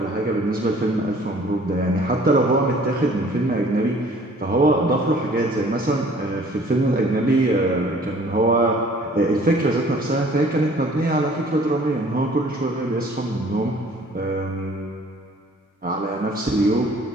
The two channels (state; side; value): normal; both; correlation 0.54